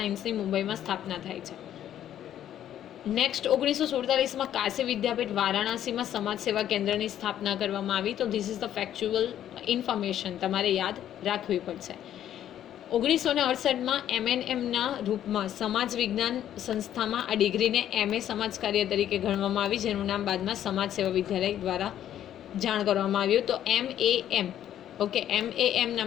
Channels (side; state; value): right; quieter; 11.0 dB